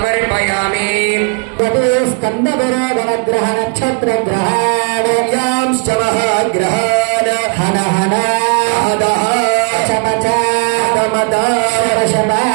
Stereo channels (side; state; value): left; quieter; 38.7 dB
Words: स्कन्दविरोधनग्रह नक्षत्रग्रहाणयांश्च महाग्रहान् हन हन हदः चमच दमद